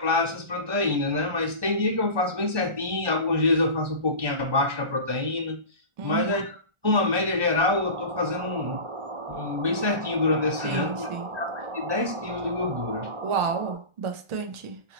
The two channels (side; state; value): left; late; 1.4 ms